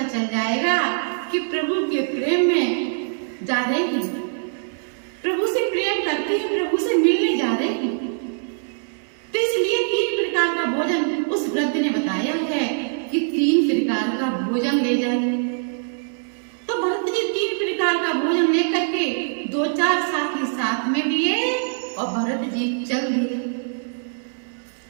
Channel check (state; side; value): silent; left; digital silence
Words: चल जाएगा कि प्रभु के प्रेम में जा रहे हैं, प्रभु से प्रेम करते हैं, प्रभु से मिलने जा रहे हैं। तो इसलिए 3 प्रकार का भोजन उस वृद्ध ने बताया है कि 3 प्रकार का भोजन ले जाइए। तो भरत जी 3 प्रकार का भोजन लेकर के 2-4 साथी साथ में लिए और भरत जी चल दिए।